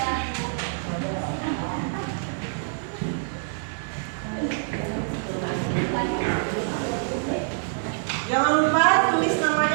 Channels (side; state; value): left; silent; 61 dB below the other